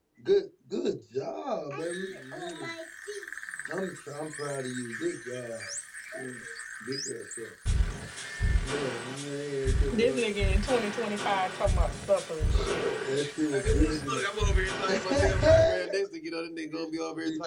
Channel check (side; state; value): both; identical; correlation 1.00